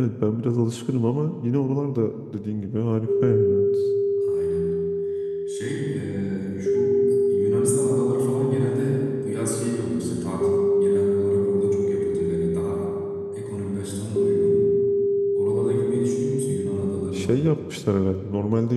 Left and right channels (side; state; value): both; identical; correlation 1.00